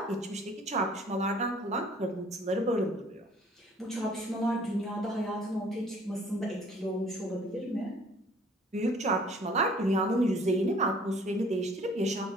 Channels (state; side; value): normal; both; correlation 0.55